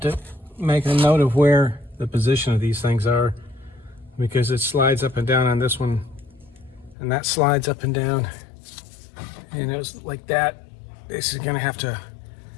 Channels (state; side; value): drops out; right; at 7.0 s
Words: to make a note of where the position of these things are, because it slides up and down on this one, and that slides up and down, and it was like that. This is gonna have to